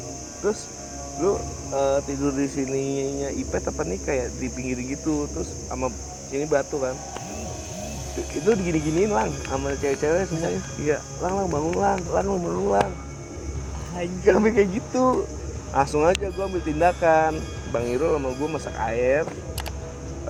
Terus lu tidur di sininya Ipet apa nih kayak di pinggir gitu, terus sama sini batu kan. Itu digini-giniin lang sama cewek-cewek semuanya. Iya, lang bangun lang bangun lang. Anjir, sampai kayak gitu. Langsung aja gua ambil tindakan. Bang Irul sama gua masak air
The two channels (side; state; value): both; identical; correlation 1.00